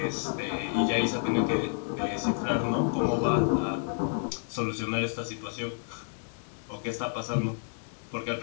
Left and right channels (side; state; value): right; silent; digital silence